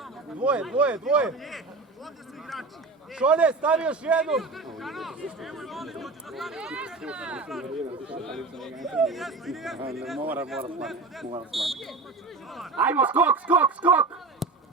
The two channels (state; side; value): quieter; left; 3.8 dB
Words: Dvoje. Šone, stavi još jednu. Mora slati. Ajmo, skok!